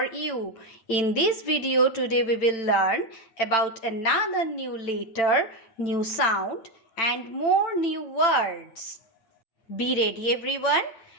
you. In this video today we will learn about another new letter, new sound and more new words. Be ready everyone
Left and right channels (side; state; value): right; late; 8.9 ms